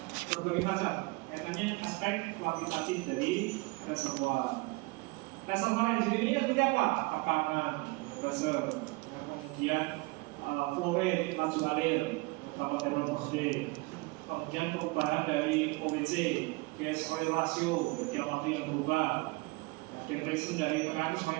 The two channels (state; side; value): quieter; left; 25.3 dB